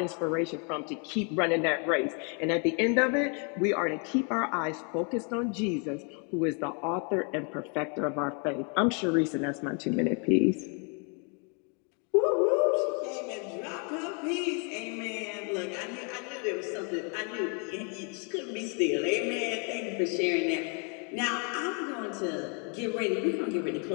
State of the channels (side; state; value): right; quieter; 37.5 dB